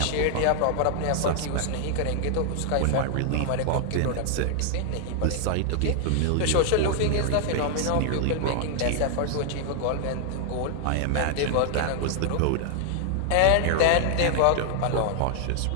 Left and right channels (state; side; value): different; both; correlation 0.00